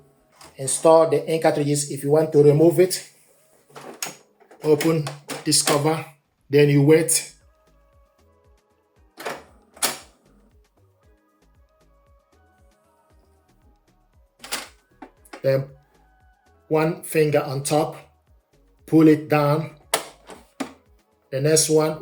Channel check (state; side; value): identical; both; correlation 1.00